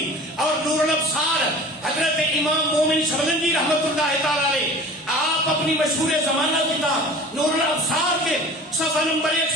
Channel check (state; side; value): normal; both; correlation 0.40